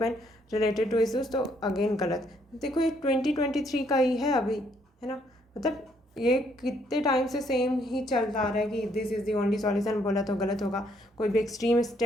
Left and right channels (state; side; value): normal; both; correlation 0.70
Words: related to issues, तो अगेन गलत। देखो ये 2023 का ही है अभी, है ना, मतलब ये कितने टाइम से सेम ही चलता आ रहा है कि this is the only solution, बोला तो गलत होगा। कोई भी एक्सट्रीम